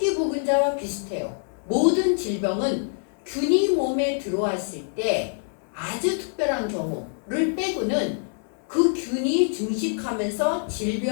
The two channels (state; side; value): silent; right; digital silence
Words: 보균자와 비슷해요. 모든 질병은 균이 몸에 들어왔을 때 아주 특별한 경우를 빼고는 그 균이 증식하면서